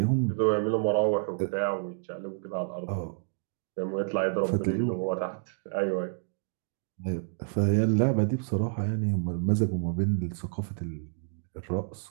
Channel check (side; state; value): left; silent; digital silence